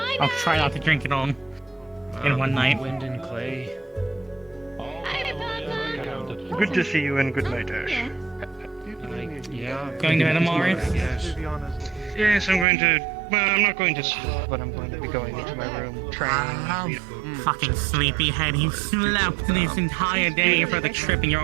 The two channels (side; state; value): left; drops out; at 12.7 s